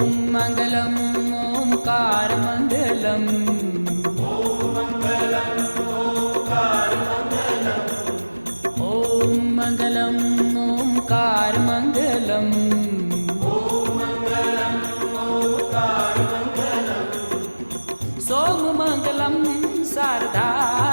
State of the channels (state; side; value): inverted; both; correlation -1.00